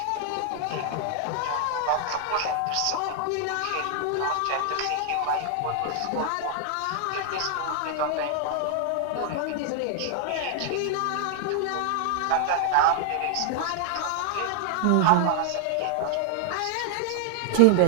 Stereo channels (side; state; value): both; different; correlation 0.00